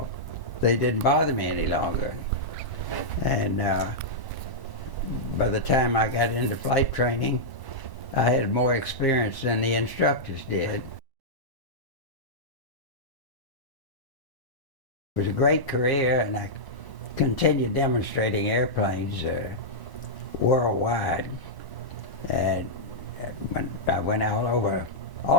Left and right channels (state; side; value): late; right; 1.0 ms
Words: they didn't bother me any longer. And by the time I got into flight training, I had more experience than the instructors did. It was a great career, and I continued demonstrating airplanes worldwide. And I went all over